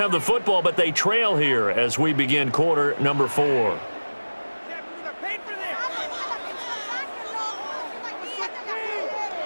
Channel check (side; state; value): both; inverted; correlation -1.00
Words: the football, but they trail here as we begin quarter number 4.